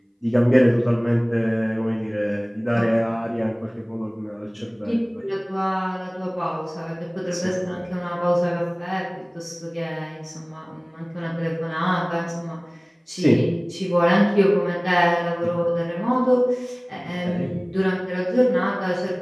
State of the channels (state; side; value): identical; both; correlation 1.00